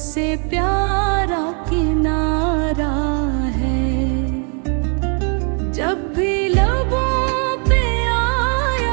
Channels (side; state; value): left; quieter; 39.6 dB